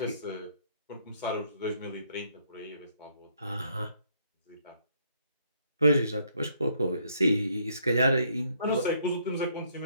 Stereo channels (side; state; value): both; inverted; correlation -0.68